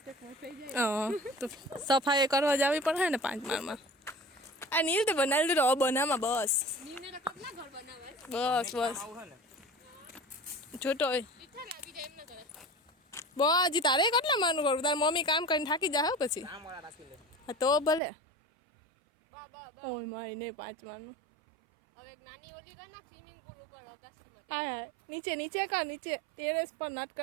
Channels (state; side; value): drops out; left; at 18.0 s